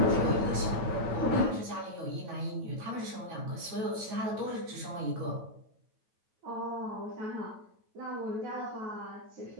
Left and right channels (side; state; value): left; late; 9.2 ms